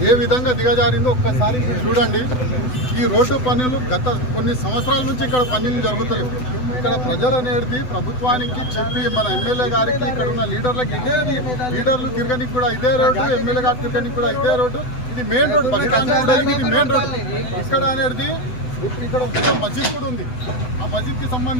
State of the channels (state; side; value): late; right; 8.0 ms